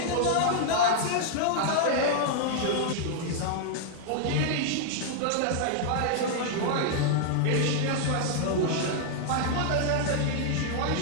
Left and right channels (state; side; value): different; both; correlation -0.01